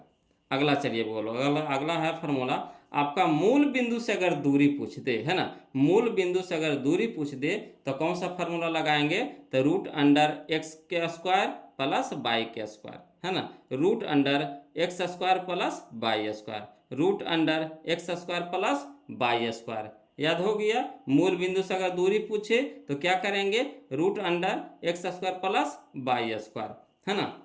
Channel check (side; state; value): both; identical; correlation 1.00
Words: अगला चलिए बोलो, अगला है फार्मूला, आपका मूल बिंदु से अगर दूरी पूछ दे, है ना, मूल बिंदु से अगर दूरी पूछ दे तो कौन सा फार्मूला लगाएंगे, तो रूट अंडर एक्स के स्क्वायर प्लस वाई के स्क्वायर, है ना, root under x square plus y square, root under x square plus y square. याद हो गया। मूल बिंदु से अगर दूरी पूछे तो क्या करेंगे, root under x square plus y square, है ना।